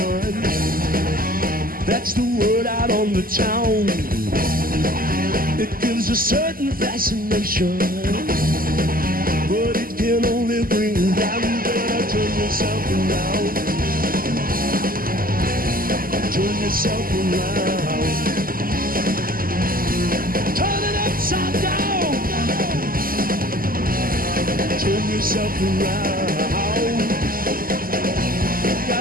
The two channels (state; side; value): late; left; 0.42 ms